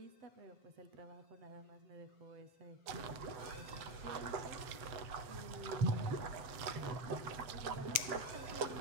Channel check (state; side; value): late; left; 7.3 ms